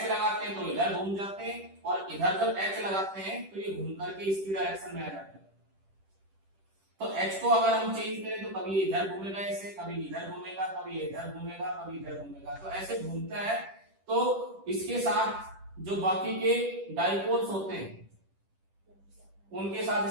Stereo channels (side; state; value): left; late; 10 ms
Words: लगाते हैं तो इधर घूम जाते हैं और इधर जब H लगाते हैं तो ये घूम करके इसकी डायरेक्शन में आ जाते हैं। तो H को अगर हम चेंज करें तो कभी इधर घूमेगा ऐसे, कभी इधर घूमेगा, कभी इधर घूमेगा, कभी इधर घूमेगा, तो ऐसे घूमता है। तो इसके साथ जो बाकी के डाइपोल्स होते हैं उनके साथ